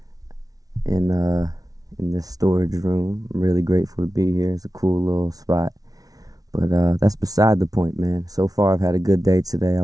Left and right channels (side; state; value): left; late; 0.18 ms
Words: in this storage room. I'm really grateful to be here. It's a cool little spot. But that's beside the point, man. So far I've had a good day today. I